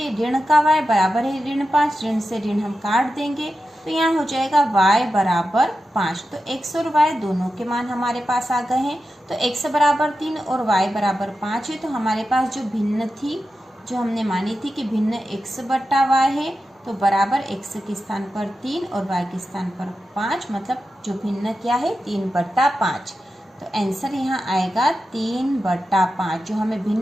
ऋण का y बराबर है ऋण 5, ऋण से ऋण हम काट देंगे तो यहाँ हो जाएगा y बराबर 5। तो x और y दोनों के मान हमारे पास आ गए हैं। तो x बराबर 3 और y बराबर 5 है, तो हमारे पास जो भिन्न थी, जो हमने मानी थी कि भिन्न x बट्टा y है, तो बराबर x के स्थान पर 3 और y के स्थान पर 5, मतलब जो भिन्न क्या है 3/5। तो आंसर यहाँ आएगा 3/5। जो हमें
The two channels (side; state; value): both; normal; correlation 0.91